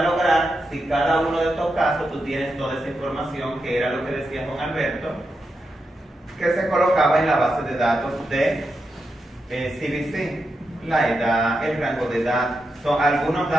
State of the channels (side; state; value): both; normal; correlation 0.86